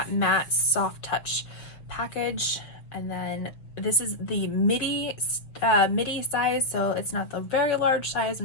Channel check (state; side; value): late; right; 6.4 ms